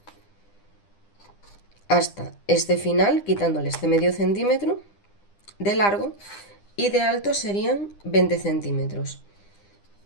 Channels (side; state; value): right; late; 9.9 ms